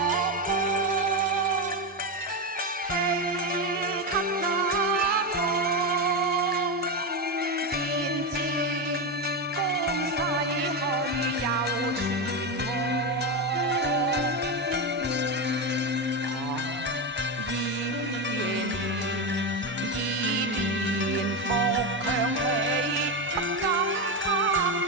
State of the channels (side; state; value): both; normal; correlation 0.13